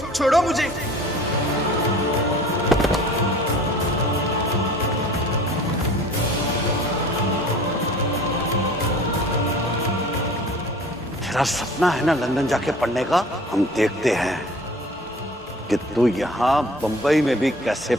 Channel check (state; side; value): normal; both; correlation 0.45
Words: छोड़ो मुझे। तेरा सपना है ना लंदन जाके पढ़ने का? हम देखते हैं कि तू यहाँ बंबई में भी कैसे